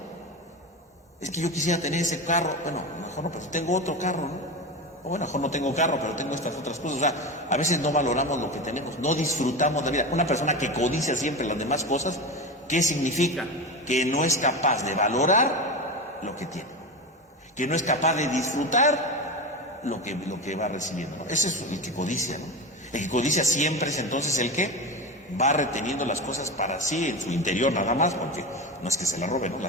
Es que yo quisiera tener ese carro. Bueno, mejor no, pero tengo otro carro, ¿no? O bueno, mejor no tengo carro, pero tengo estas otras cosas. O sea, a veces no valoramos lo que tenemos, no disfrutamos la vida. Una persona que codicia siempre las demás cosas, ¿qué significa? Que no es capaz de valorar lo que tiene, que no es capaz de disfrutar lo que va recibiendo, ¿no? Ese es el que codicia, ¿no? El que codicia siempre es entonces el que va reteniendo las cosas para sí en su interior nada más, porque no es que se las robe, ¿no?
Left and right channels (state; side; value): normal; both; correlation 0.22